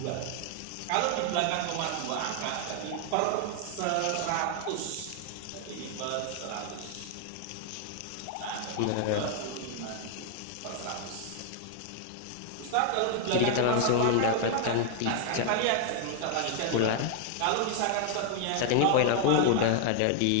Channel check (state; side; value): different; both; correlation 0.00